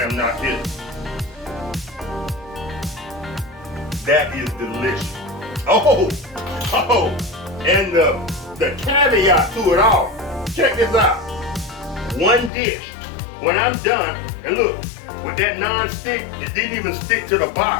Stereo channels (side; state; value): right; drops out; at 12.5 s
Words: am not kidding. That is delicious. Oh, and the caveat to it all. Check this out. One dish. When I'm done, and look, with that non-stick, it didn't even stick to the